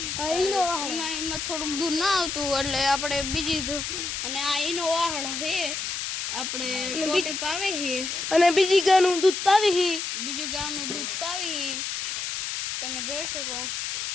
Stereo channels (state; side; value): noise; left; hiss, 3 dB below the sound